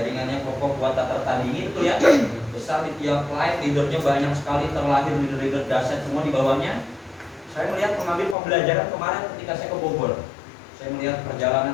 kokoh kuat tak tertandingi, betul ya? Besar di tiap line, leadernya banyak sekali, terlahir leader-leader dahsyat semua di bawahnya. Saya melihat mengambil pembelajaran kemarin ketika saya ke Bogor. Saya melihat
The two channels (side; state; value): right; drops out; at 8.3 s